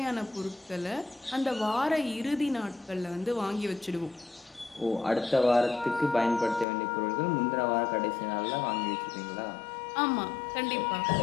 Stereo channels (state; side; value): drops out; right; at 6.7 s